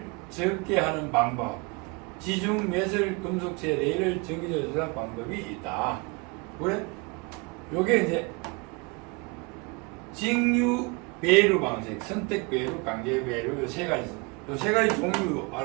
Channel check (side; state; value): left; quieter; 29.0 dB